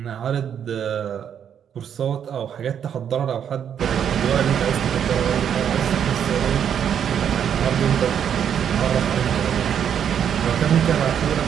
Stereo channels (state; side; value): quieter; left; 8.6 dB